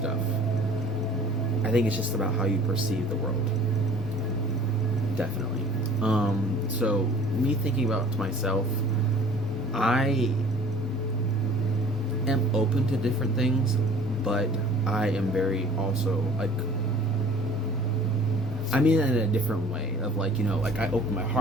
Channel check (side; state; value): both; normal; correlation 0.49